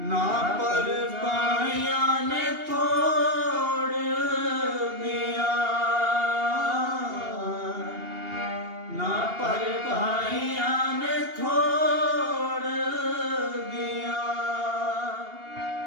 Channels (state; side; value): late; left; 2.8 ms